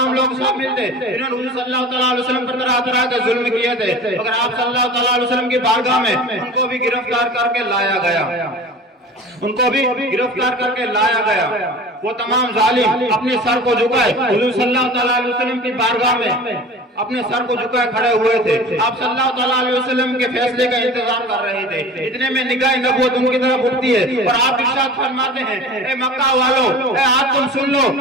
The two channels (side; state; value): both; normal; correlation 0.38